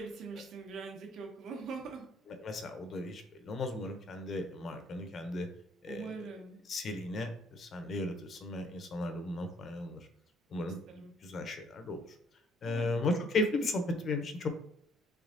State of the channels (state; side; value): normal; both; correlation 0.64